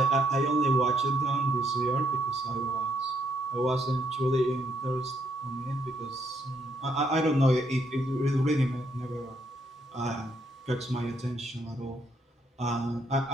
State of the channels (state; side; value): normal; both; correlation 0.73